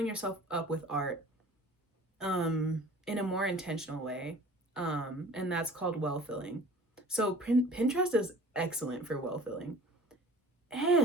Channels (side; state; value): both; normal; correlation 0.45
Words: yourself up with art in a more intentional way. And that's called well filling. So Pinterest is excellent for well filling.